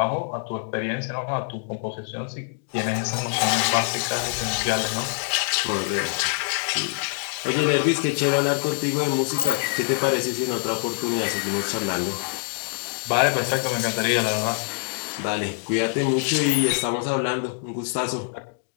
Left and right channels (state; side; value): silent; right; digital silence